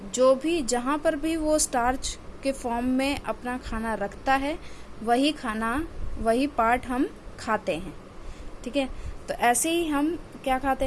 जो भी जहाँ पर भी वो स्टार्च के फॉर्म में अपना खाना रखता है वही पार्ट हम खाते हैं। ठीक है, तो ऐसे ही हम क्या खाते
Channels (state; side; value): identical; both; correlation 1.00